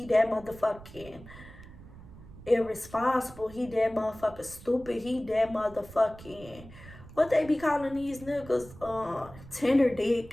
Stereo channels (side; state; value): right; noise; rumble, 18 dB below the sound